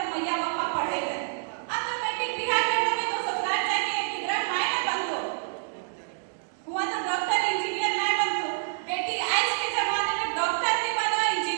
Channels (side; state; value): left; silent; digital silence